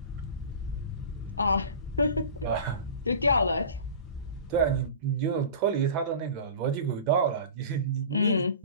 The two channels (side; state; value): both; inverted; correlation -0.36